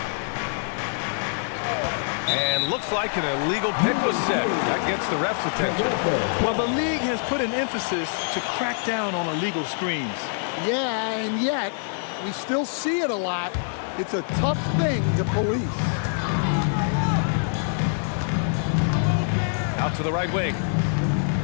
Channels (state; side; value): silent; right; 62 dB below the other